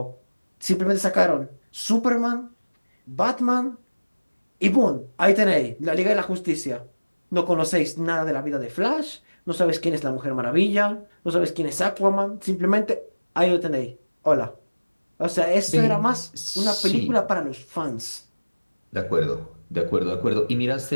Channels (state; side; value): inverted; both; correlation -1.00